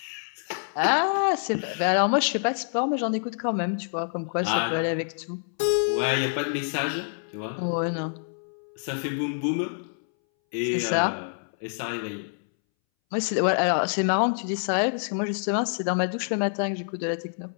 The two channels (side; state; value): right; silent; 60 dB below the other